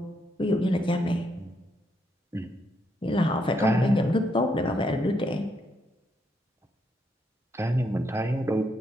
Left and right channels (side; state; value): both; normal; correlation 0.77